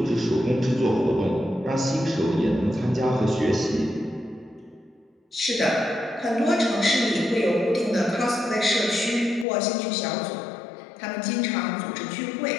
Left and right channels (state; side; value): drops out; right; at 9.5 s